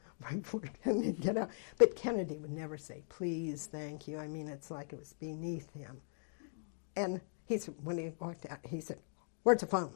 right before Kennedy get out. But Kennedy would never say, "Please, thank you." I mean, it's like it was beneath him. And he said, when he walked out, he said, "Where's the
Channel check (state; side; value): silent; right; digital silence